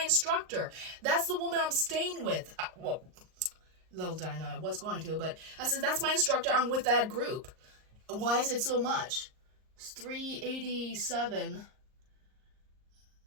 instructor. That's the woman I'm staying with. Well, little did I know I was going to, but I said, that's my instructor. I'm with that group. Why is it so much? It's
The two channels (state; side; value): late; left; 38 ms